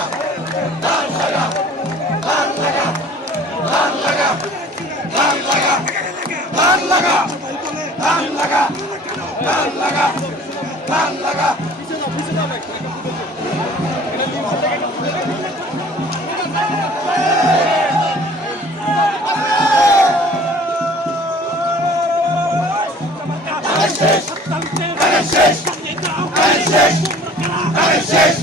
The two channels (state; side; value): normal; both; correlation 0.49